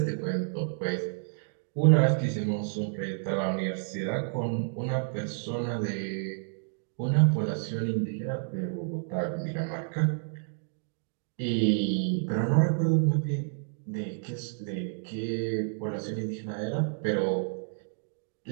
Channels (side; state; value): left; silent; digital silence